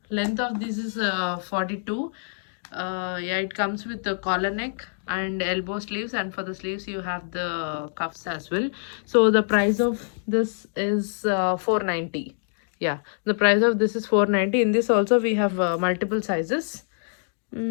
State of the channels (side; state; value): right; silent; digital silence